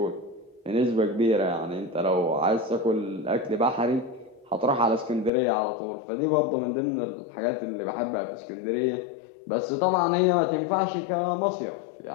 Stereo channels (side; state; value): right; drops out; at 5.3 s